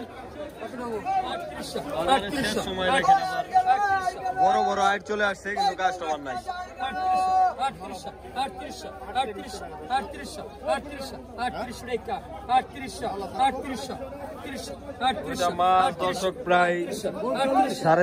শেষ সময় দেখেন আবার বড় বড় আইট চলে আসছে, কিন্তু কাস্টমার নাই। মাছ দর্শক প্রায়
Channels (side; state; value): both; identical; correlation 1.00